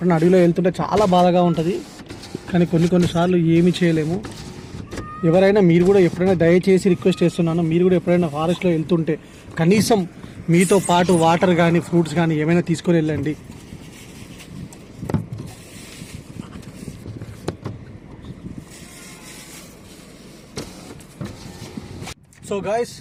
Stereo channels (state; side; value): identical; both; correlation 1.00